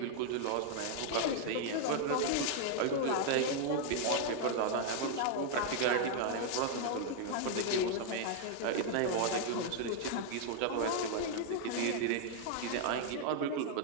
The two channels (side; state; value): both; different; correlation 0.00